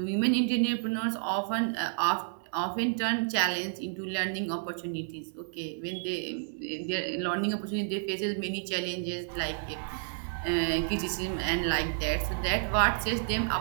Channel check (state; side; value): silent; left; 57 dB below the other